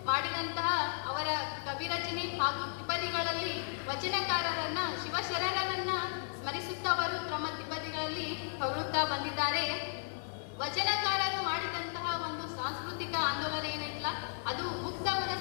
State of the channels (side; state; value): right; silent; 55 dB below the other